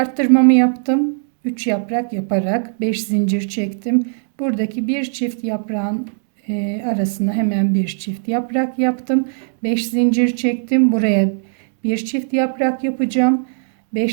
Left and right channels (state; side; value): silent; left; digital silence